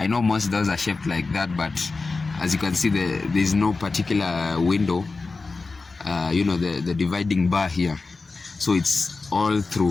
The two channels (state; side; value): quieter; right; 3.9 dB